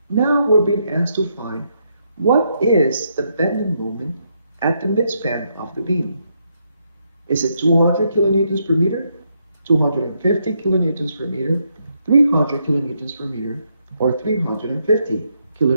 Now we're being asked to find what is the bending moment at the midspan of the beam. Is it 200 kilonewtons per meter, 250 kilonewtons per meter, 300 kilonewtons per meter, or 350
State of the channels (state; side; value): inverted; both; correlation -0.78